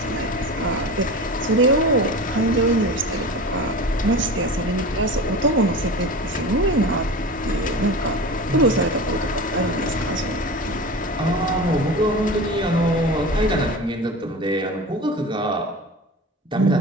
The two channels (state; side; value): normal; both; correlation 0.32